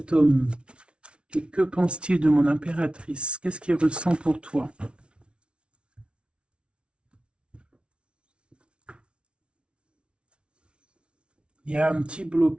homme, et que pense-t-il de mon impératrice? Qu'est-ce qu'il ressent pour toi? Il y a un petit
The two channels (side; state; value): left; late; 0.058 ms